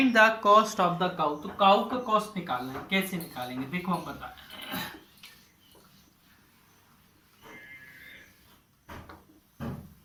the cost of the cow. तो काउ का कॉस्ट निकालना है, कैसे निकालेंगे देखो हम बता।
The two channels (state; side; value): identical; both; correlation 1.00